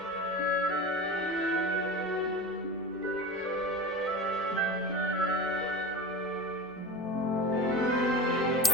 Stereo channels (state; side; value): noise; left; hum, 29 dB below the sound